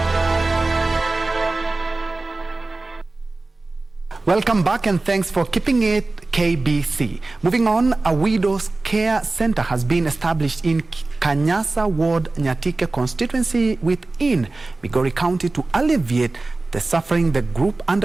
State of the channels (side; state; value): left; quieter; 3.3 dB